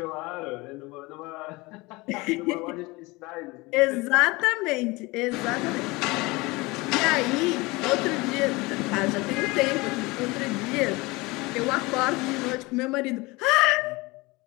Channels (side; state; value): right; quieter; 23.3 dB